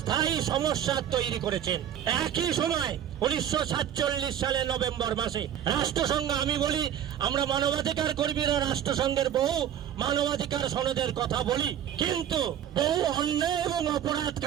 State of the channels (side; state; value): left; quieter; 10.1 dB